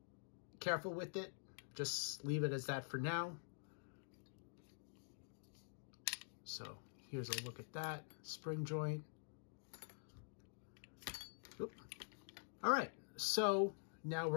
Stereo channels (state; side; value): silent; right; digital silence